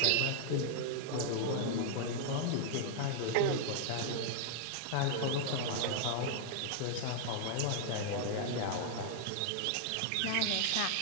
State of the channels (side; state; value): both; different; correlation -0.01